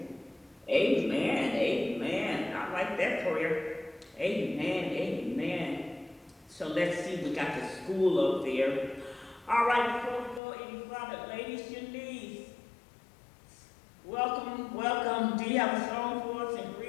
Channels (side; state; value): right; drops out; at 10.4 s